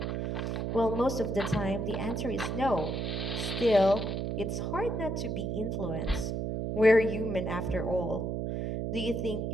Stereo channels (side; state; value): right; noise; hum, 1 dB below the sound